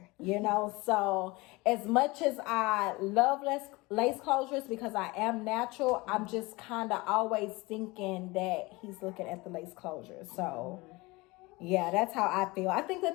So as much as I love lace closures because I am natural, I'm just kind of always thinking that he's looking at the lace closure. So yeah, that's how I feel. I think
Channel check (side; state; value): right; quieter; 23.1 dB